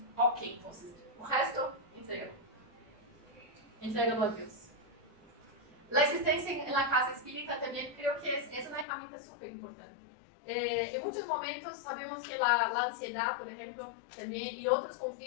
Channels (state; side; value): drops out; right; at 8.8 s